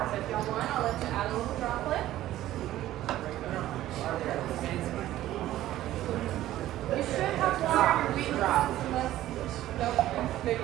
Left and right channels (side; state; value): left; quieter; 14.2 dB